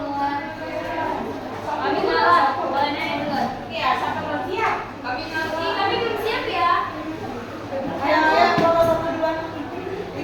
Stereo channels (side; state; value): both; identical; correlation 1.00